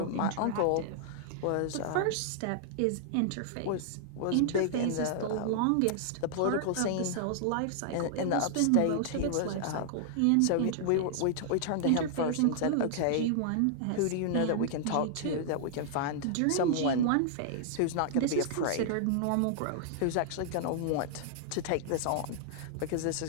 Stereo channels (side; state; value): both; different; correlation -0.01